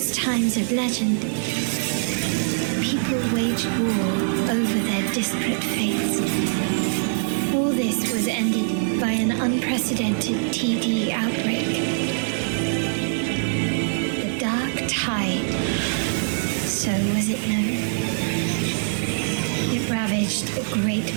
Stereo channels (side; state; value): left; silent; digital silence